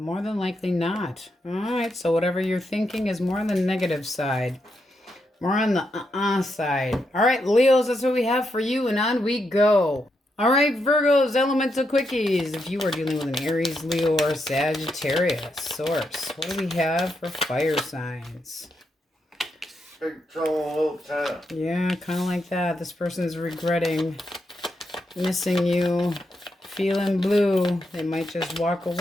than likely not. All right, so whatever you're thinking is more on the negative side. More on the side. All right, Leos, that's what we have for you, and on we go. All right, Virgos, elemental quickies. If you are dealing with an Aries, Leo, or Sagittarius source, what do we have for fire signs? Big trouble, time. Yeah, kind of like that. This person's regretting missing you, feeling blue. They might just walk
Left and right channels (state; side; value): normal; both; correlation 0.82